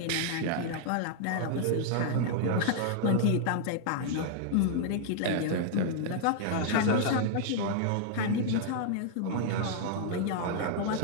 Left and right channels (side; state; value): both; different; correlation -0.01